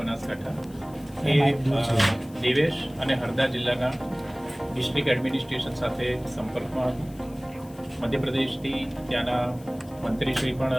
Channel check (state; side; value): noise; left; hiss, 25 dB below the sound